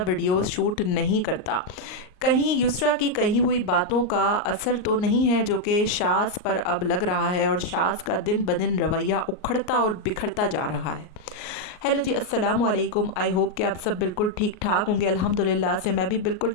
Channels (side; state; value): right; late; 38 ms